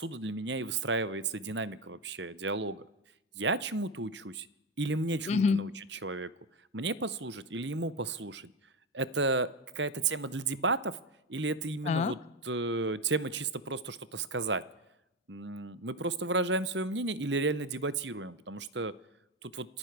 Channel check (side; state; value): both; normal; correlation 0.14